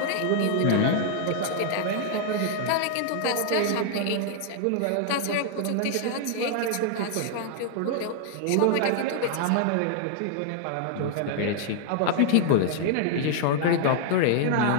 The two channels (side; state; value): both; different; correlation -0.01